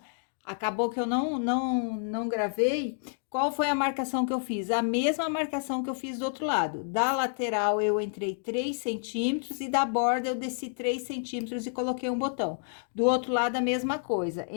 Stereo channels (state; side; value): silent; right; digital silence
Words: acabou que eu não gravei. Qual foi a marcação que eu fiz? A mesma marcação que eu fiz do outro lado. Da lateral eu entrei 3 centímetros e da borda eu desci 3 centímetros e coloquei um botão. Do outro lado a mesma coisa,